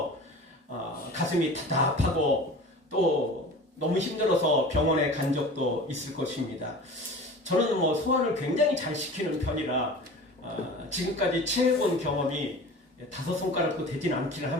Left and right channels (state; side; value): normal; both; correlation 0.38